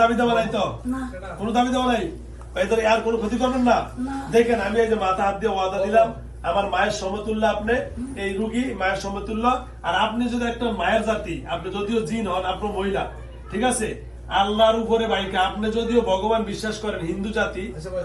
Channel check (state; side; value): identical; both; correlation 1.00